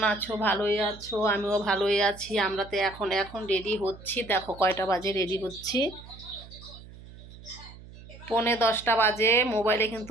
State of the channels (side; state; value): right; noise; hum, 18 dB below the sound